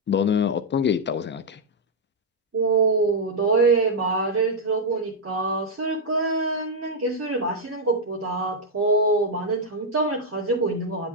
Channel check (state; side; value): normal; both; correlation -0.02